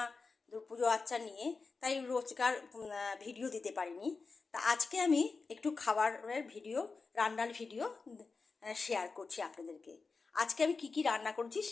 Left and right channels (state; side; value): quieter; right; 4.4 dB